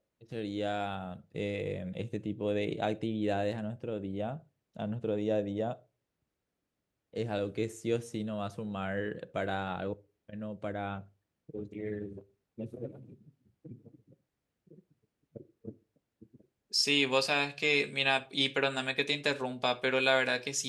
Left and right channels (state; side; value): identical; both; correlation 1.00